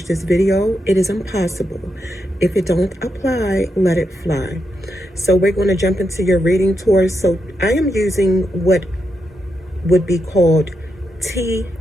this video. It is impossible. If it don't apply, let it fly. So we're going to jump into your reading, Taurus. So I am using what would be called tea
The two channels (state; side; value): normal; both; correlation 0.84